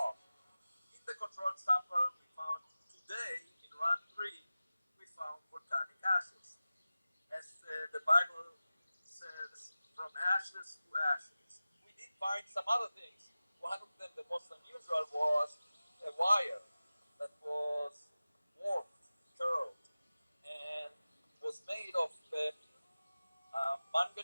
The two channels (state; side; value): inverted; both; correlation -0.96